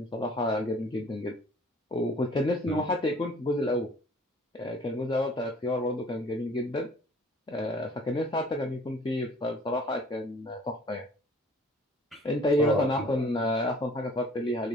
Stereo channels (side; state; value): both; normal; correlation 0.52